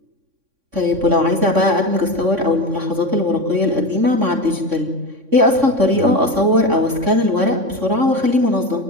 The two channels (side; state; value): left; late; 3.6 ms